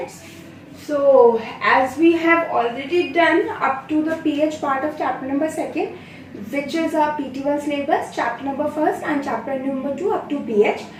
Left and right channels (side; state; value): both; identical; correlation 1.00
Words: So as we have already done up to the PH part of chapter number 2nd, which is our PT1 syllabus, chapter number 1st and chapter number 2 up to PH,